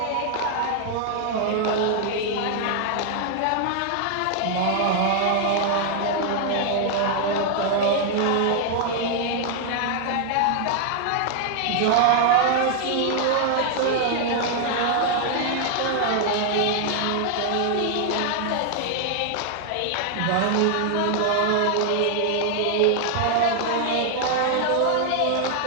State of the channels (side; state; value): both; different; correlation 0.00